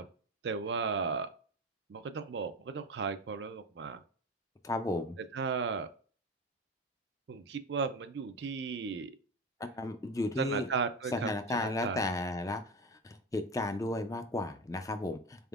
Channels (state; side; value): normal; both; correlation 0.24